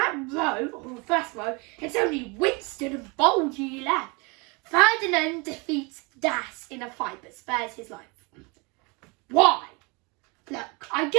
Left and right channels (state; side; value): quieter; left; 29.1 dB